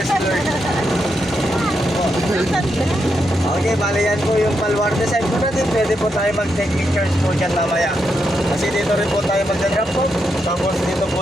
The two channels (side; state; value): both; normal; correlation 0.82